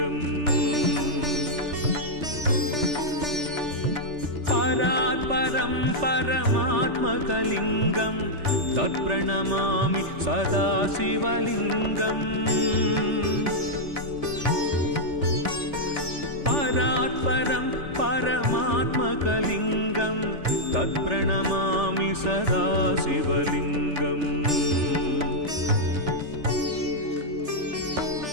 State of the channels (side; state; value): left; late; 3.4 ms